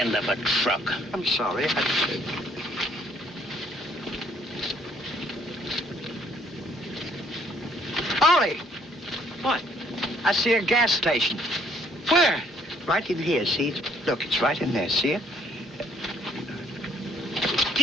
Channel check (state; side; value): normal; both; correlation 0.63